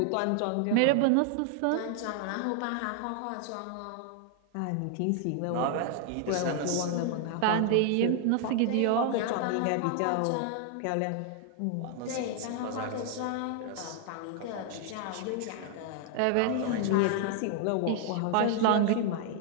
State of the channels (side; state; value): both; different; correlation 0.00